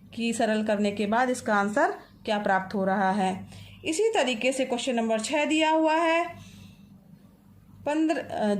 कि सरल करने के बाद इसका आंसर क्या प्राप्त हो रहा है। इसी तरीके से क्वेश्चन नंबर 6 दिया हुआ है।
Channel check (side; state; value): both; identical; correlation 1.00